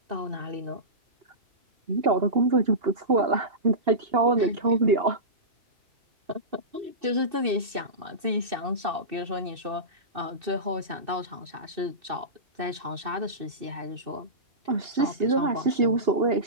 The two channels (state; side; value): late; left; 2.6 ms